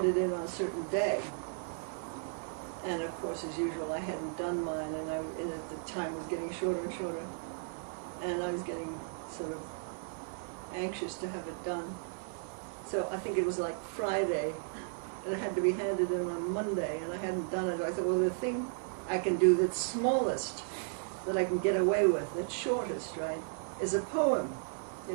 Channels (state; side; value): silent; left; 55 dB below the other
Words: in on a certain day. And of course, as usual, I hadn't done mine, and at the time was getting shorter and shorter. And I was getting sort of anxious to have it done. So I think it was like Friday, and it had to be handed in on Monday, and I hadn't done it. I thought, well, the thing I can do that's smallest, that I can get away with, that's shortest, right, is a poem, you